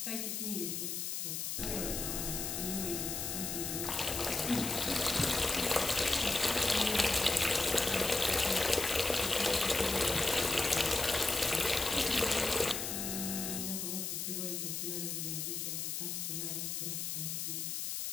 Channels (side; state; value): left; noise; hiss, 3 dB below the sound